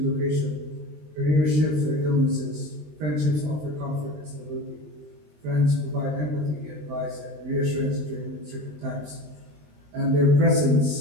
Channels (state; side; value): late; left; 20 ms